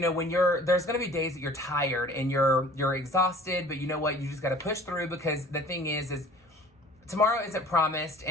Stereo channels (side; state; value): both; normal; correlation 0.48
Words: there's going to be days that you're tired and you're exhausted, but you know what? You just got to push through, because the thing is tomorrow isn't promised.